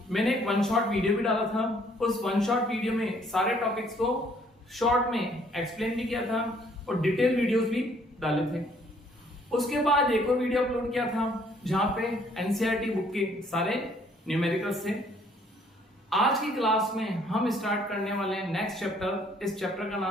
मैंने एक वन शॉट वीडियो भी डाला था। उस वन शॉट वीडियो में सारे टॉपिक्स को शॉर्ट में एक्सप्लेन भी किया था और डिटेल वीडियोस भी डाले थे। उसके बाद एक और वीडियो अपलोड किया था जहां पे एनसीईआरटी बुक के सारे न्यूमेरिकल्स थे। आज की क्लास में हम स्टार्ट करने वाले हैं नेक्स्ट चैप्टर। इस चैप्टर का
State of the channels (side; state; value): both; normal; correlation 0.63